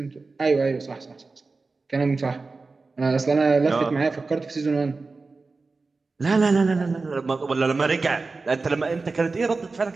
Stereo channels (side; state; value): left; quieter; 3.9 dB